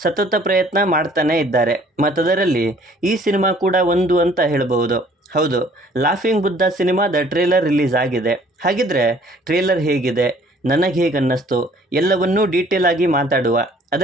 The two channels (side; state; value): both; normal; correlation 0.57